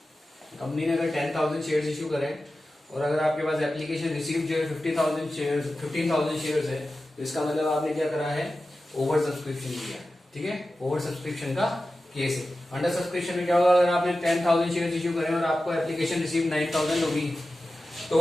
कंपनी ने अगर 10,000 शेयर्स इशू करें और अगर आपके पास एप्लीकेशन रिसीव जो है 15,000 शेयर्स है, तो इसका मतलब आपने क्या करा है? ओवर सब्सक्रिप्शन किया. ठीक है, ओवर सब्सक्रिप्शन का केस है. अंडर सब्सक्रिप्शन में क्या होगा? अगर आपने 10,000 शेयर्स इशू करें और आपको एप्लीकेशन रिसीव 9,000 होगी तो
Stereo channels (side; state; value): both; normal; correlation 0.94